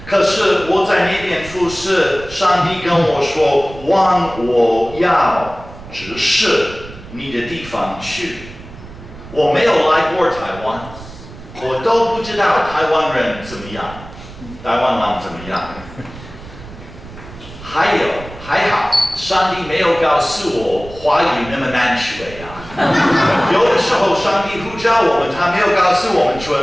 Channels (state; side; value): noise; right; rumble, 16 dB below the sound